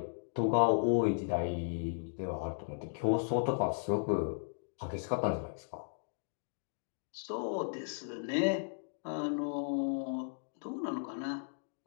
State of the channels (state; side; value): silent; right; digital silence